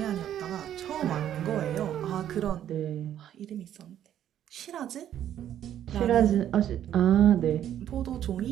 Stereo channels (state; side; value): quieter; left; 10.8 dB